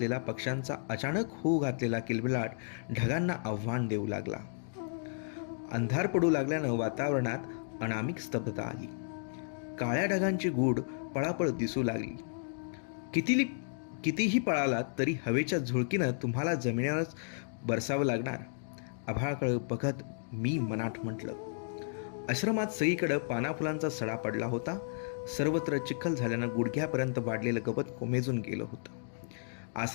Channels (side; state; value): right; silent; digital silence